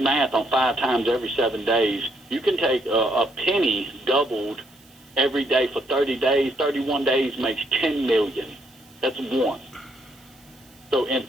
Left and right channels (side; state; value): right; noise; hiss, 28 dB below the sound